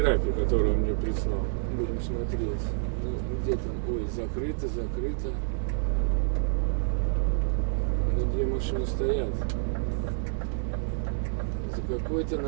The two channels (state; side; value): silent; left; 59 dB below the other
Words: которую он мне прислал. Будем смотреть. Ну, где там? Ой, закрыто, закрыто. Ну, где машины стоят? За какой-то